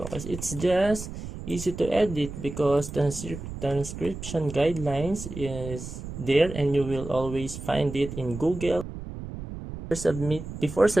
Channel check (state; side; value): noise; right; rumble, 9 dB below the sound